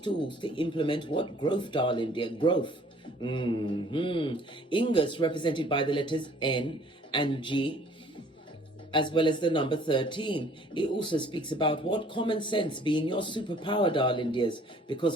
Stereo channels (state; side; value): normal; both; correlation 0.56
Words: to implement what? Growth, darling dear. Growth. Ingus represented by the letters N and G, as well as the number 13. It also speaks about what? Common sense being your superpower, darling dears, because